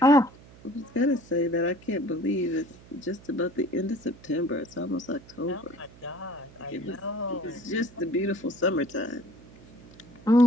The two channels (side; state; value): right; noise; hum, 22 dB below the sound